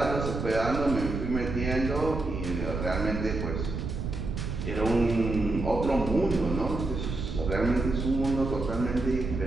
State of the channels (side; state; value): right; noise; rumble, 4 dB below the sound